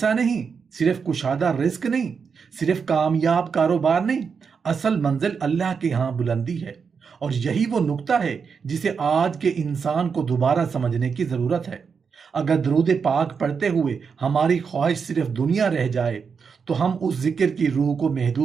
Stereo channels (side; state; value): left; quieter; 5.9 dB